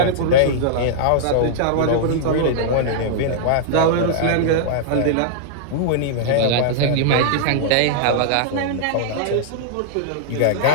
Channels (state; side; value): different; both; correlation -0.01